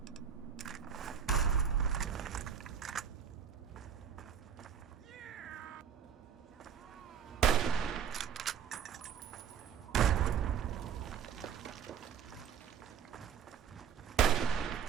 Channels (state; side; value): quieter; left; 7.8 dB